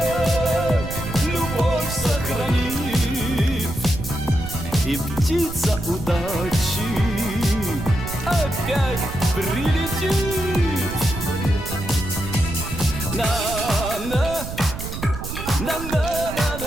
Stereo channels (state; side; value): noise; right; rumble, 8 dB below the sound